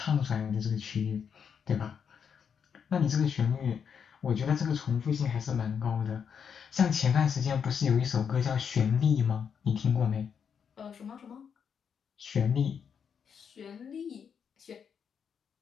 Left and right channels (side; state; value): right; quieter; 7.1 dB